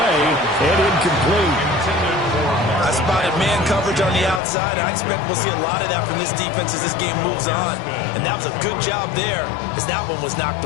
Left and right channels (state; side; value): drops out; right; at 4.4 s